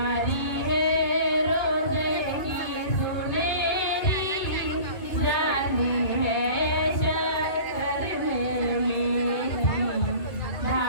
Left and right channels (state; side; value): late; right; 2.2 ms